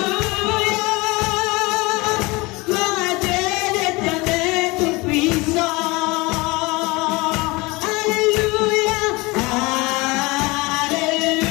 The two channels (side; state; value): right; quieter; 24.0 dB